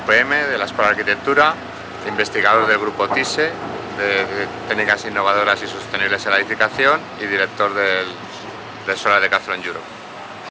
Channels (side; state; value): both; identical; correlation 1.00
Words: de la Escuela de Arquitectura, investigador del grupo TISE, de Técnicas Innovadoras y Sostenibles en la Edificación, y director del Solar Decathlon Europe.